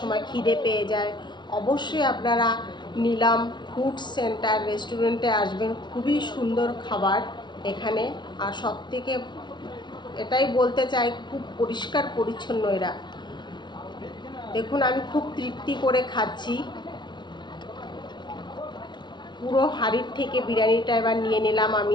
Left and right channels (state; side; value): late; right; 0.22 ms